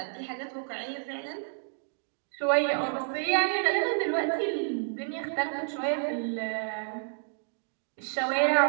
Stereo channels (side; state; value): left; silent; digital silence